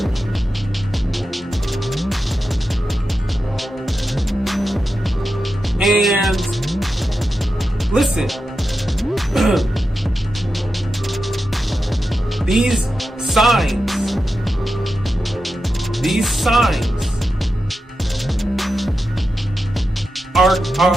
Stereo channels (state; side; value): normal; both; correlation 0.90